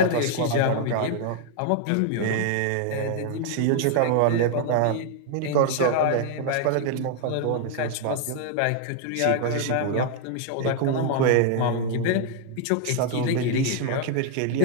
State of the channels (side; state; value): both; different; correlation 0.00